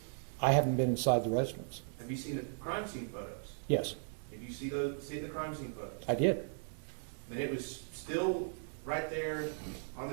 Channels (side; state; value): left; silent; digital silence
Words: I haven't been inside the residence. Have you seen the crime scene photos? Yes, Have you see the crime scene photos? I did. And it was still right there on